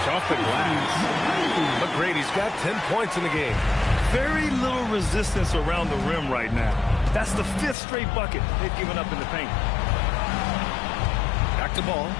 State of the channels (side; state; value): right; drops out; at 7.8 s